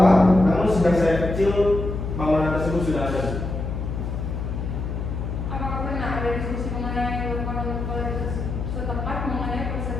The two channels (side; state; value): left; noise; hum, 4 dB below the sound